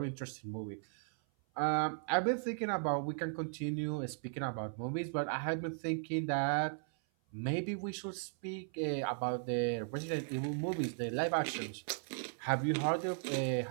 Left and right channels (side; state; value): left; silent; 53 dB below the other